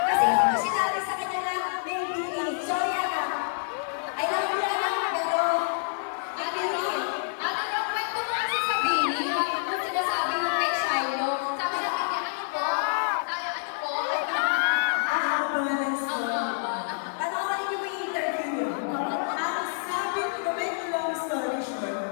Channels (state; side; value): silent; right; digital silence